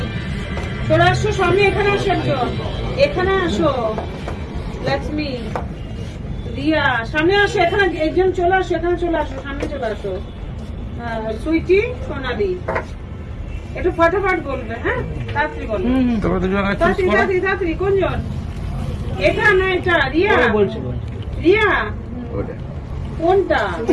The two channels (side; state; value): both; identical; correlation 1.00